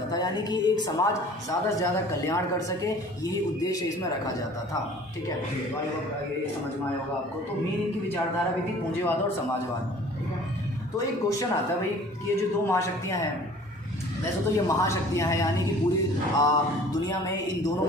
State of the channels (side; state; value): both; normal; correlation 0.49